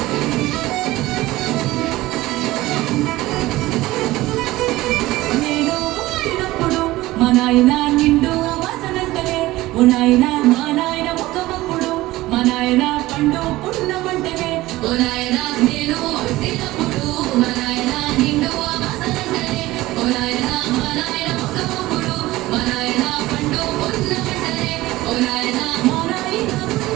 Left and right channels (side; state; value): left; quieter; 17.9 dB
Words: మా నాయన నిండు వాసనంటనే ఓ నాయన మా నాయన ముఖమప్పుడు మా నాయన పండు పున్నమంటనే ఓ నాయన నేను పుట్టినప్పుడు మా నాయన నిండు వాసనంటనే ఓ నాయన మా నాయన ముఖమప్పుడు మా నాయన పండు పున్నమంటనే ఓ నాయన మా నాయన